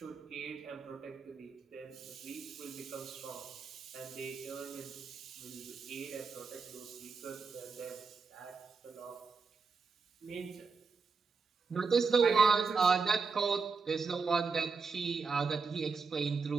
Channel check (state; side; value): quieter; left; 4.9 dB